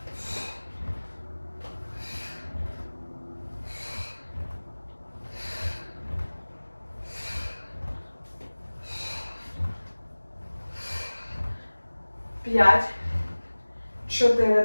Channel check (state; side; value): inverted; both; correlation -1.00